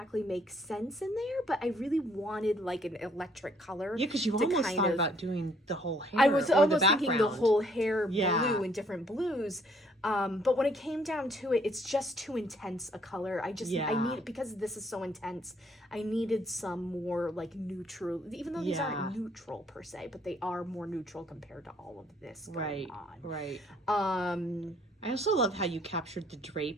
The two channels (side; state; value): both; normal; correlation 0.65